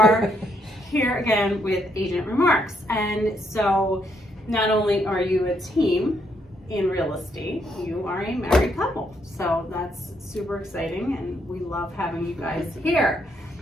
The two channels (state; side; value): normal; both; correlation 0.74